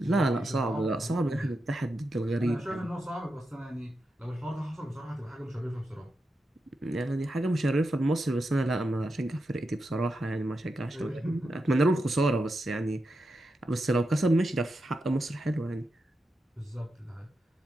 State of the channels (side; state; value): both; normal; correlation 0.87